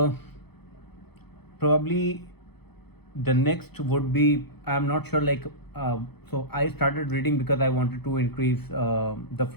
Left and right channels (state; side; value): late; right; 0.98 ms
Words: probably the next would be I'm not sure, like, so I started reading because I wanted to increase the